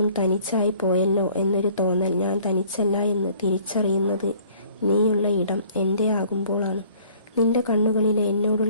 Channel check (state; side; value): inverted; both; correlation -0.55